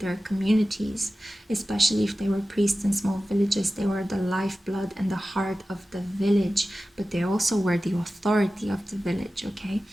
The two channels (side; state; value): both; normal; correlation 0.95